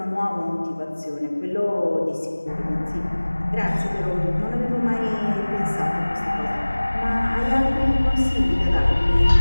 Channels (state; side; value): inverted; both; correlation -1.00